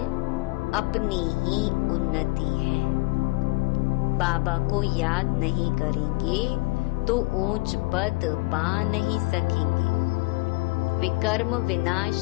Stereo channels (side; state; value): right; quieter; 24.4 dB